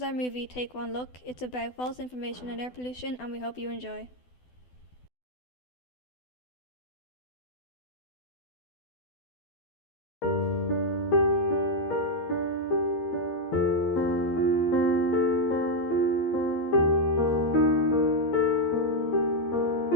our movie Take One Look. It's about false information and air pollution and we hope you enjoy.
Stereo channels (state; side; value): late; right; 12 ms